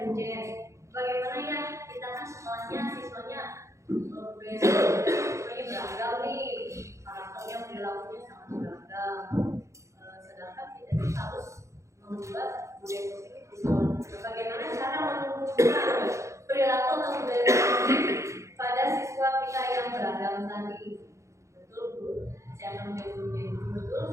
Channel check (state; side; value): late; left; 0.14 ms